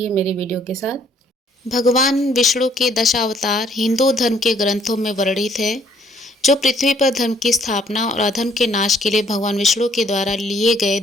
मेरी वीडियो के साथ। भगवान विष्णु के दशावतार हिंदू धर्म के ग्रंथों में वर्णित है, जो पृथ्वी पर धर्म की स्थापना और अधर्म के नाश के लिए भगवान विष्णु के द्वारा लिए गए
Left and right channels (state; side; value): normal; both; correlation 0.63